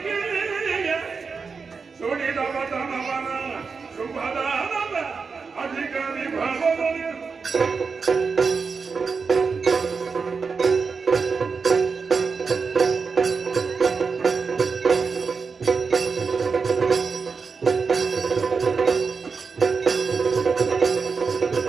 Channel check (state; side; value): quieter; left; 5.1 dB